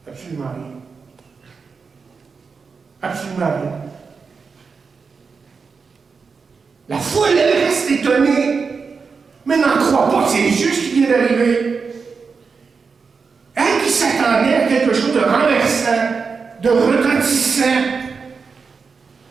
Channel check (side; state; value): left; quieter; 5.1 dB